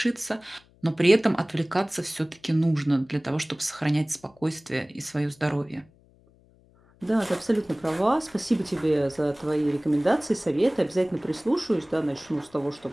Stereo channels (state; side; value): noise; left; hum, 30 dB below the sound